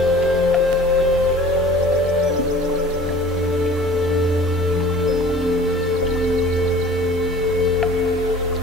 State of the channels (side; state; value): both; normal; correlation 0.46